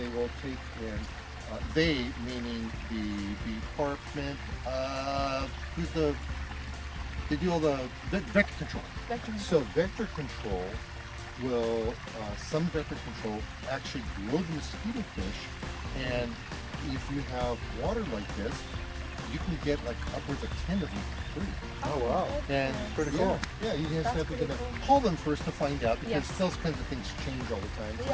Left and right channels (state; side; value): identical; both; correlation 1.00